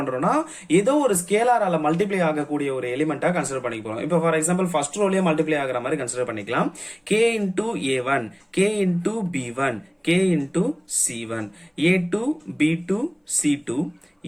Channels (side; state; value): both; identical; correlation 1.00